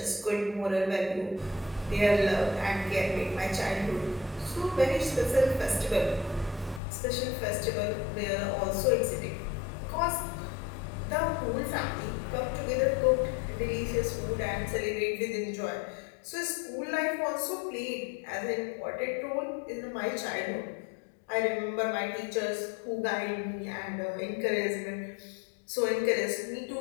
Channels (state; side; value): drops out; right; at 6.8 s